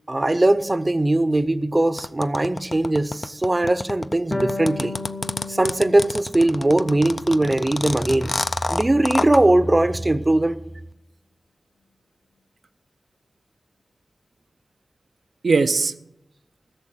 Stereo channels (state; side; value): normal; both; correlation 0.98